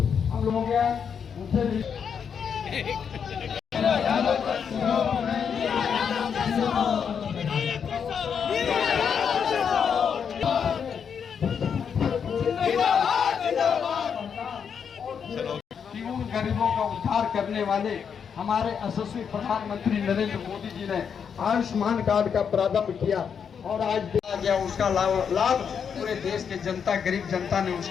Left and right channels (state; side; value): quieter; right; 7.1 dB